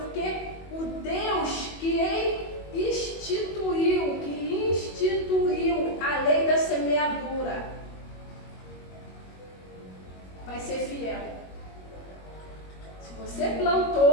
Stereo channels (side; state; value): right; late; 21 ms